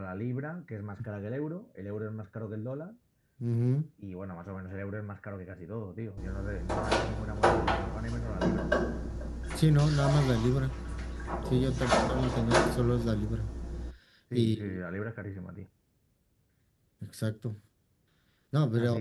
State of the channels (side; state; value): both; identical; correlation 1.00